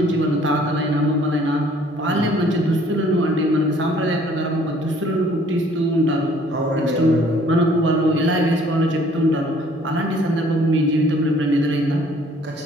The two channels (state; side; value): normal; both; correlation 0.58